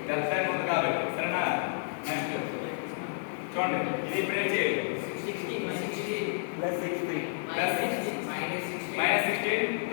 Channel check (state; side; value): silent; right; digital silence